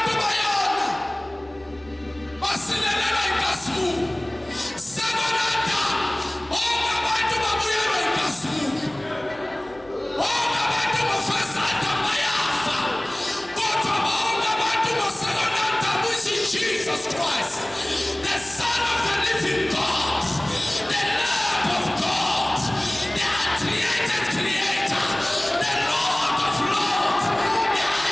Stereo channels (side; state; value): left; noise; hum, 27 dB below the sound